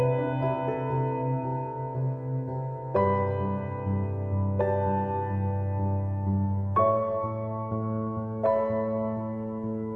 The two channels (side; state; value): both; identical; correlation 1.00